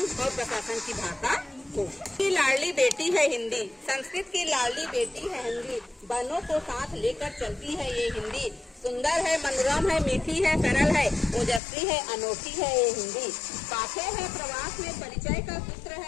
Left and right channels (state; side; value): drops out; right; at 11.6 s